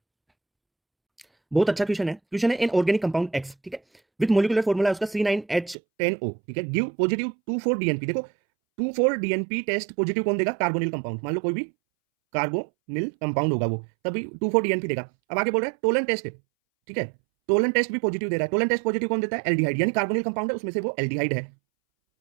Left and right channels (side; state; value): left; drops out; at 5.8 s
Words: बहुत अच्छा क्वेश्चन है इन ऑर्गेनिक कंपाउंड X, ठीक है, विद मोलिकुलर फॉर्मूला उसका C9H10O, ठीक है, गिव पॉजिटिव 2,4-DNP। देखो 2,4-DNP टेस्ट पॉजिटिव कौन देगा, कार्बोनिल कंपाउंड, मान लो कोई भी कार्बोनिल कंपाउंड होगा वो, तभी 2,4-DNP देगा। अब आगे बोल रहा है टोलन टेस्ट, ठीक है, टोलन टेस्ट भी पॉजिटिव दे रहा है। टोलन टेस्ट पॉजिटिव कौन देता है, एल्डिहाइड, यानी कार्बोनिल कंपाउंड है उसमें से वो एल्डिहाइड है,